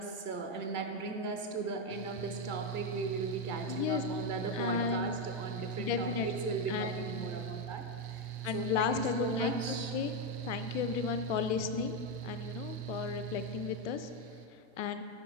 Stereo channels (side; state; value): left; late; 1.7 ms